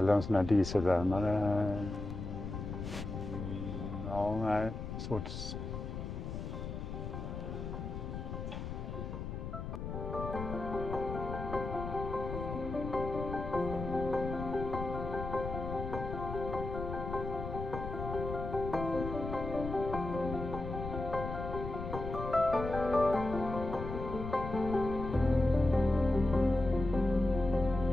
en sån här dieselvärmare. Ja, nej, svårt.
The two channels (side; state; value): left; noise; rumble, 6 dB below the sound